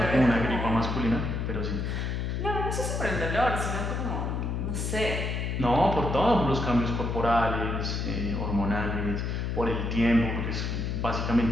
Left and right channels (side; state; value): left; noise; hum, 1 dB below the sound